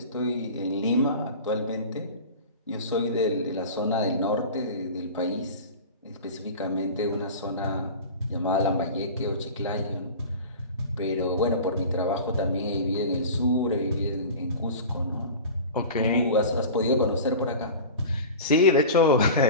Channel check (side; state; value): both; inverted; correlation -0.34